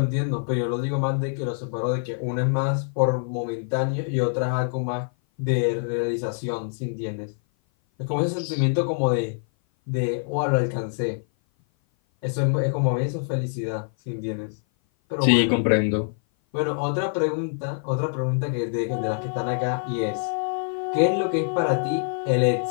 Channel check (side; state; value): right; silent; 56 dB below the other